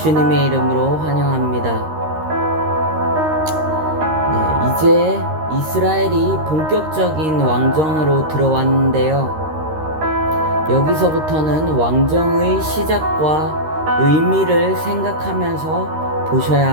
이름으로 환영합니다. 네, 이제 이스라엘이 본격적인 왕정으로 들어왔는데요. 여기서부터는 왕정의 시작과 의미를 생각하면서 보셔야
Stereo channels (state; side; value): late; left; 13 ms